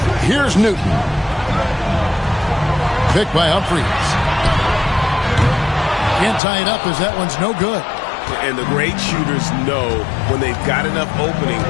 Here's Newton. Picked by Humphries. Can't tie it up as that one's no good. And the great shooters know when they've got enough opening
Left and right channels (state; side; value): drops out; right; at 6.4 s